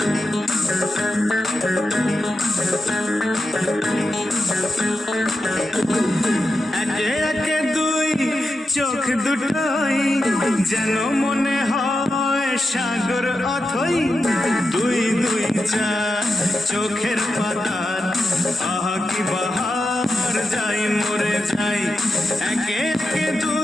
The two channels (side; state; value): both; normal; correlation 0.89